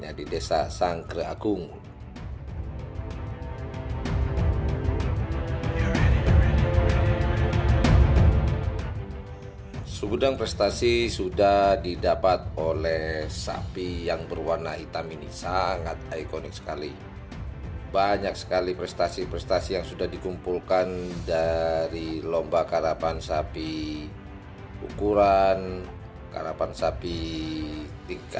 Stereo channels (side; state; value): both; identical; correlation 1.00